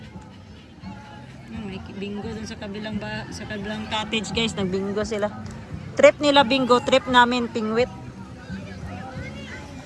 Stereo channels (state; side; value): identical; both; correlation 1.00